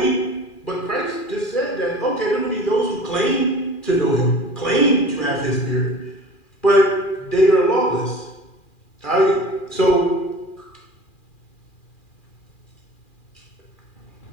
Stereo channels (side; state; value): right; late; 2.4 ms